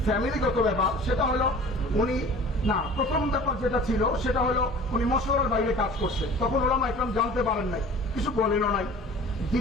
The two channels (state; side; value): normal; both; correlation 0.44